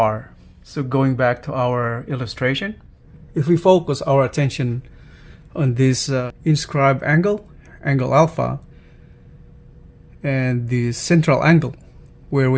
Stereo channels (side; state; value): both; identical; correlation 1.00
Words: So going back to our illustration, if we focus our attention on this inscribed angle, angle alpha, and the central angle where